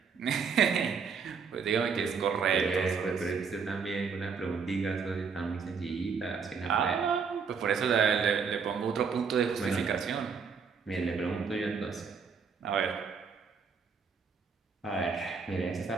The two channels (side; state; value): left; quieter; 5.7 dB